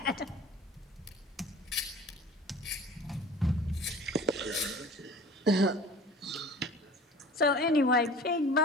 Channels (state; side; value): normal; both; correlation 0.43